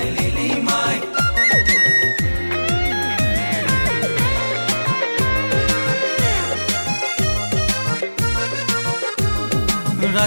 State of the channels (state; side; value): inverted; both; correlation -1.00